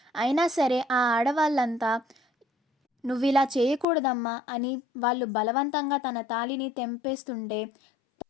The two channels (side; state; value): right; drops out; at 3.9 s